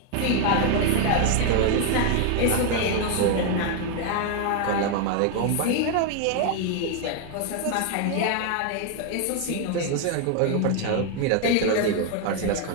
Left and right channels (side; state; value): both; different; correlation 0.01